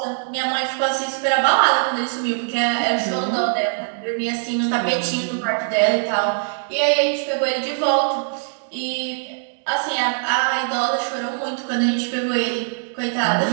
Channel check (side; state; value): left; silent; digital silence